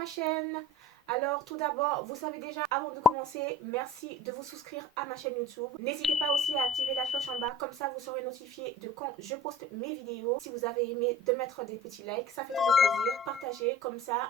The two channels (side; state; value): both; normal; correlation 0.42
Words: chaîne. Alors tout d'abord, vous savez déjà, avant de commencer, merci de vous souscrire à ma chaîne YouTube. N'hésitez pas aussi à activer la cloche en bas, comme ça vous serez notifié de quand je poste mes vidéos. Si vous avez aimé, de mettre des petits likes, ça fait toujours plaisir. Partagez, comme